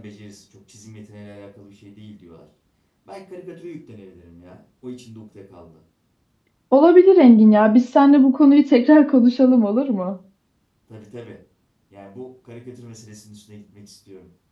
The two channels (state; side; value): identical; both; correlation 1.00